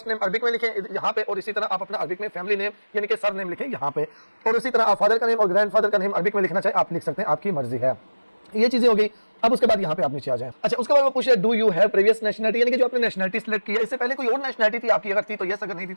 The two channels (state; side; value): inverted; both; correlation -1.00